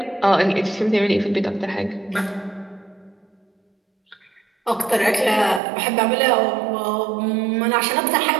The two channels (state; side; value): drops out; left; at 5.6 s